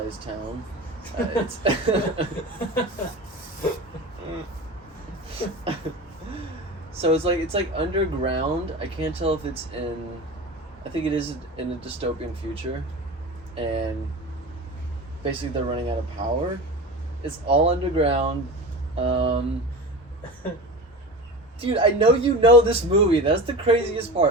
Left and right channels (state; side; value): normal; both; correlation 0.30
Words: town. It's so it's like underground. I can't tell if it's in. I think it is in a dystopian future, and basically they're running out of power. It's all underground. Dude, I know you know this movie. That's the craziest